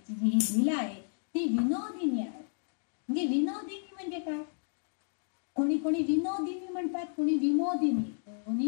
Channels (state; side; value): silent; right; digital silence